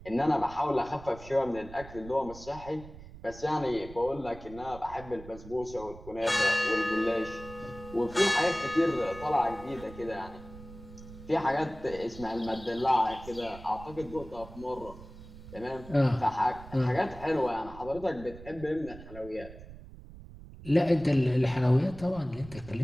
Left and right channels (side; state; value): right; noise; rumble, 16 dB below the sound